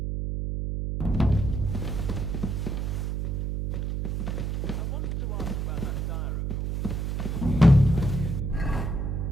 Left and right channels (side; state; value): right; noise; hum, 1 dB below the sound